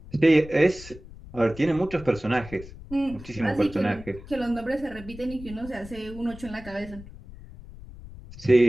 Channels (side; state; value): left; noise; rumble, 16 dB below the sound